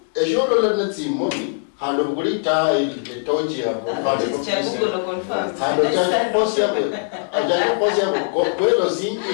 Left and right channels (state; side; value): silent; right; digital silence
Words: ejoro la natsimoni hando kulita ile tochi ya confirm. Hando cha possible. Ajaje possible kwelo singi